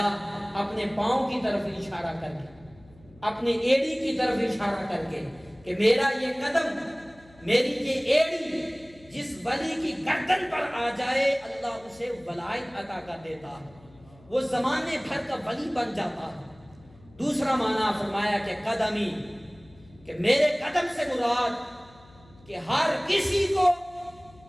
اپنے پاؤں کی طرف اشارہ کر کے، اپنے ایڑی کی طرف اشارہ کر کے کہ میرا یہ قدم، میری یہ ایڑی جس ولی کی گردن پر آ جائے اللہ اسے ولایت عطا کر دیتا ہے، وہ زمانے بھر کا ولی بن جاتا ہے۔ دوسرا معنی فرمایا کہ قدمی، کہ میرے قدم سے مراد کہ ہر کسی کو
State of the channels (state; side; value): noise; left; hum, 25 dB below the sound